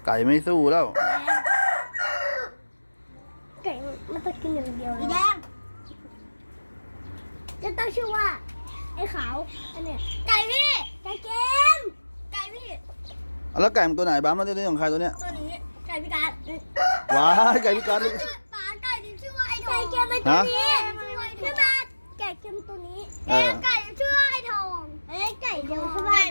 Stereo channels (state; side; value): inverted; both; correlation -1.00